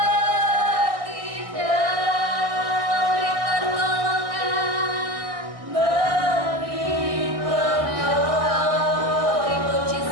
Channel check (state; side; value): late; left; 1.6 ms